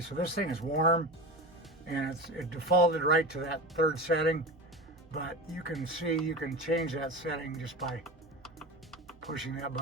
so this thing is warm, and it defaulted right to that 3rd setting. But you can see, you can change that setting just by pushing that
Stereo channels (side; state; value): both; normal; correlation 0.27